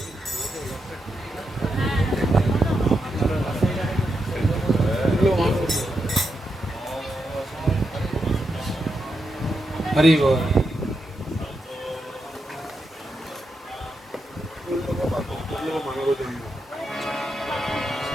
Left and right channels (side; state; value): both; normal; correlation 0.85